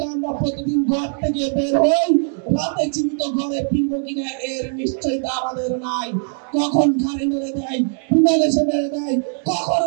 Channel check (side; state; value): left; silent; 64 dB below the other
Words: আমরা প্রতিদিন ঘর থেকে বের হই, রাতে জীবিত ঘরে ফিরবো কিনা এর নিশ্চয়তা আমাদের নাই। কখন ঘাড়ে মেরে দেয়, বিমান এসে মেরে দেয়, কখন